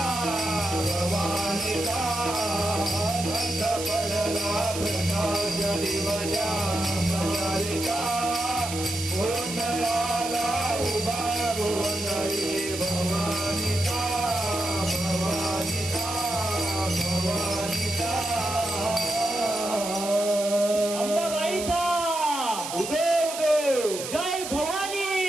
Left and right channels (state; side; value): noise; right; hiss, 7 dB below the sound